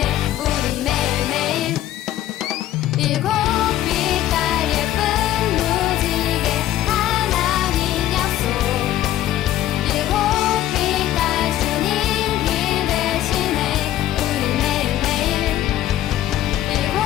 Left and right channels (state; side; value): quieter; right; 13.2 dB